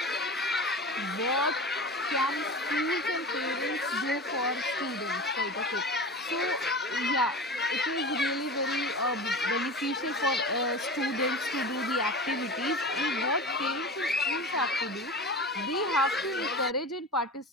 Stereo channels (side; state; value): both; normal; correlation 0.31